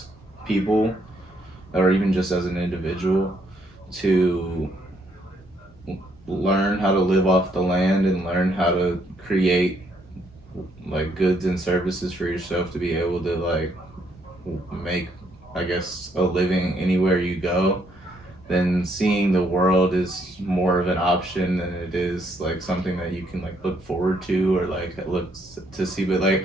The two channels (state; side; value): normal; both; correlation 0.71